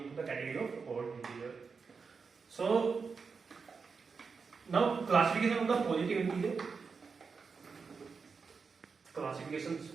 into the category of odd integer. So now classification of the positive integer. Classifications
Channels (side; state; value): left; quieter; 5.2 dB